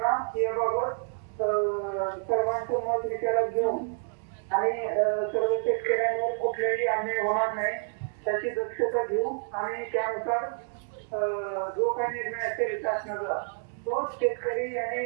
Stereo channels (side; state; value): left; silent; digital silence